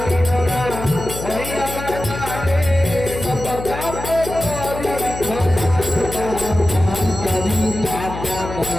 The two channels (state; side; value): noise; left; hum, 8 dB below the sound